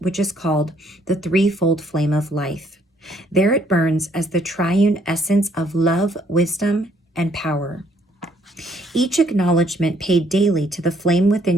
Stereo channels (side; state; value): both; normal; correlation 0.67